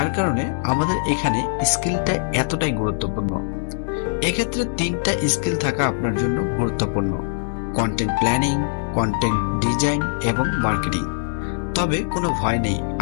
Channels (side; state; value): right; silent; digital silence